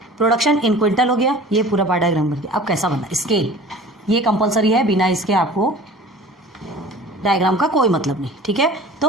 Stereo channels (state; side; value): normal; both; correlation 0.42